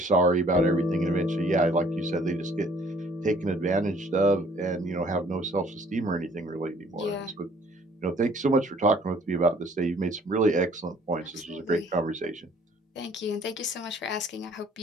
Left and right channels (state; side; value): normal; both; correlation 0.58